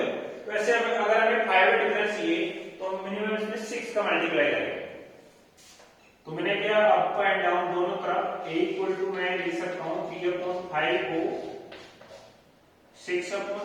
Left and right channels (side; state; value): both; identical; correlation 1.00